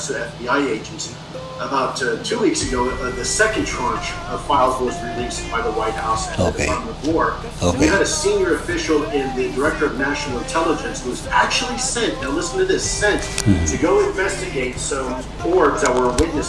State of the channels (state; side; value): identical; both; correlation 1.00